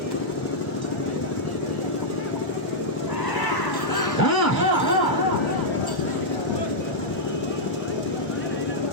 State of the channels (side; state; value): right; late; 1.0 ms